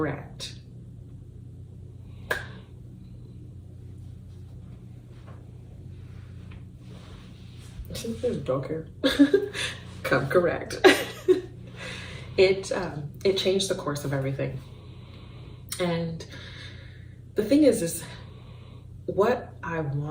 There's a dog here. Come correct. It changed the course of everything. And the thing is what I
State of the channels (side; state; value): both; identical; correlation 1.00